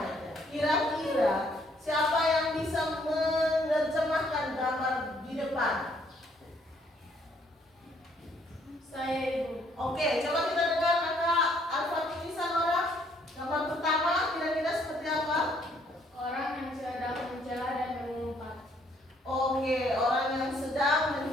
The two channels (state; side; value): normal; both; correlation 0.66